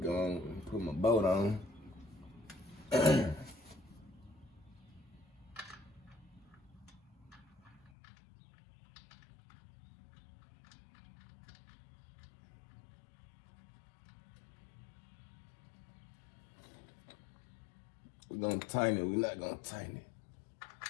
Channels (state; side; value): drops out; right; at 7.9 s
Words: on and put boat on. We're gonna tighten it. We're not gonna tighten it